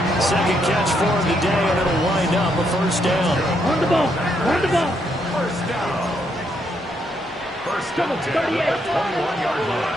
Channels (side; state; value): both; normal; correlation 0.76